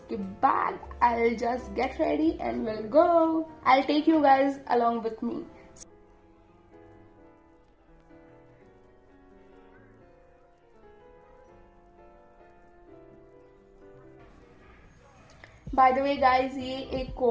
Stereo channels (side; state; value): both; identical; correlation 1.00